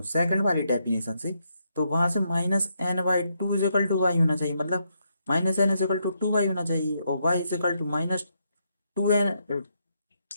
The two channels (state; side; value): inverted; both; correlation -0.78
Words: सेकंड वाली डेफिनेशन से, तो वहां से minus n by two is equal to y होना चाहिए, मतलब minus n is equal to two y होना चाहिए, और y is equal to minus two n,